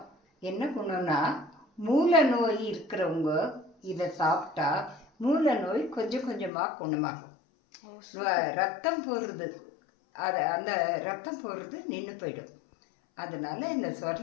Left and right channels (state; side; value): drops out; right; at 6.5 s